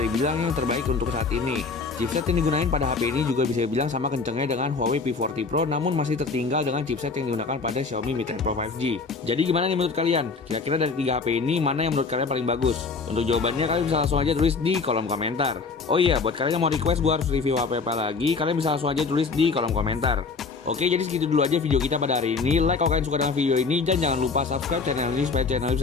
dibilang yang terbaik untuk saat ini. Chipset yang digunakan pada HP ini juga bisa dibilang sama kencangnya dengan Huawei P40 Pro, namun masih tertinggal dengan chipset yang digunakan pada Xiaomi Mi 10 Pro 5G. Jadi gimana nih menurut kalian? Kira-kira dari 3 HP ini, mana yang menurut kalian paling bagus? Untuk jawabannya kalian bisa langsung aja tulis di kolom komentar. Oh iya, buat kalian yang mau request gue harus review HP apa lagi, kalian bisa langsung aja tulis di kolom komentar. Oke, jadi segitu dulu aja video kita pada hari ini. Like kalau kalian suka dengan video ini, dan jangan lupa subscribe channel ini supaya channel ini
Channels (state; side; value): quieter; right; 4.5 dB